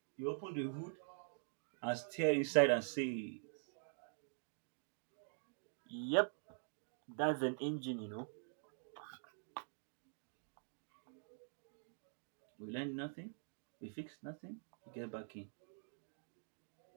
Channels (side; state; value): left; silent; digital silence